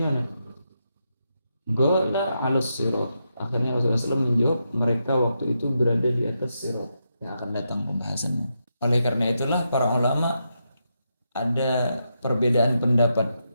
mana? Qala 'alas sirat. Akhirnya Rasulullah SAW menjawab, mereka waktu itu berada di atas sirat. Yang akan datang pembahasannya. Oleh karena itulah para ulama ada perbedaan pendapat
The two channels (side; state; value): both; inverted; correlation -0.84